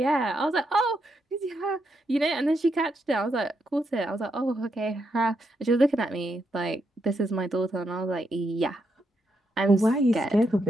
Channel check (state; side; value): normal; both; correlation 0.80